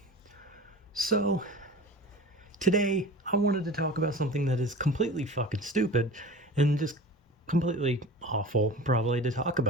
so today I wanted to talk about something that is completely fucking stupid and just completely awful, probably, to talk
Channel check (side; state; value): both; normal; correlation 0.36